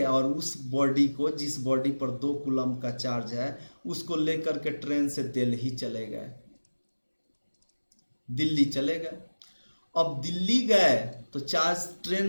और उस बॉडी को, जिस बॉडी पर 2 कूलम का चार्ज है, उसको लेकर के ट्रेन से दिल्ली चले गए, दिल्ली चले गए। अब दिल्ली गए तो चार्ज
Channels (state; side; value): inverted; both; correlation -1.00